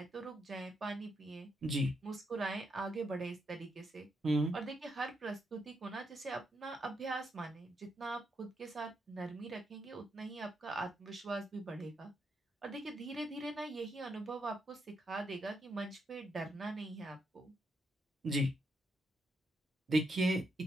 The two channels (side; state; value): both; normal; correlation 0.80